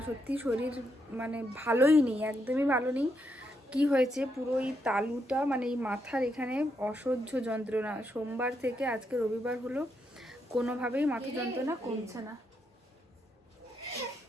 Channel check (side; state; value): both; normal; correlation 0.80